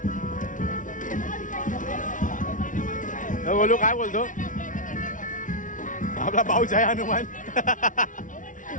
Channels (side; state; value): right; late; 0.38 ms